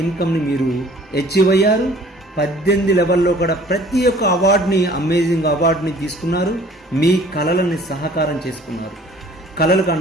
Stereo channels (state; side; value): normal; both; correlation 0.52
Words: ఇన్కమ్ని మీరు అచీవ్ అయ్యారు. 18 లెవెల్లో కూడా ప్రతి ఒక్క అవార్డుని, అమేజింగ్ అవార్డుని తీసుకున్నారు. మీ కళలని సహకారం చేసుకున్నారు. కళలకు